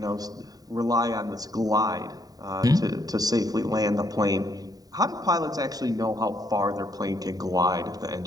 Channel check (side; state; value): left; late; 0.18 ms